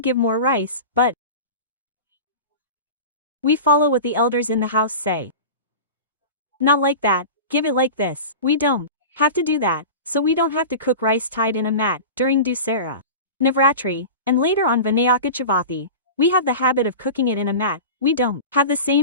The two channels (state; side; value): inverted; both; correlation -0.31